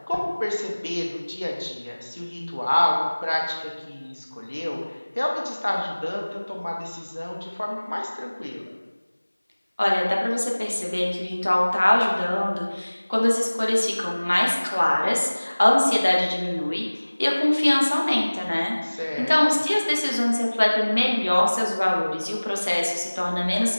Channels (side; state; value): both; inverted; correlation -1.00